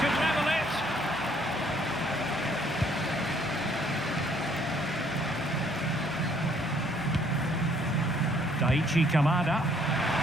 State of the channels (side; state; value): both; normal; correlation 0.64